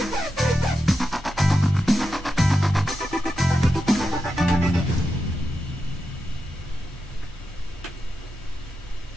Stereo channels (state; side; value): normal; both; correlation 0.88